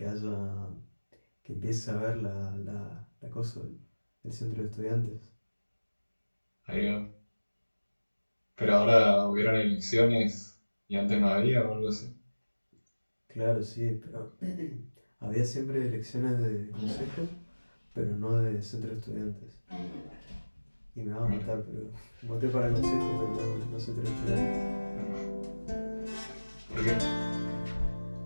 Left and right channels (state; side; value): inverted; both; correlation -1.00